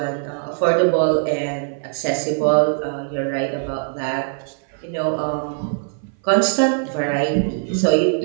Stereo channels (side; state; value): left; silent; 58 dB below the other